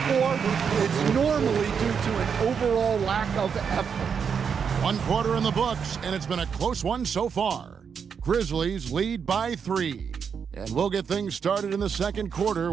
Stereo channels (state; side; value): quieter; left; 6.7 dB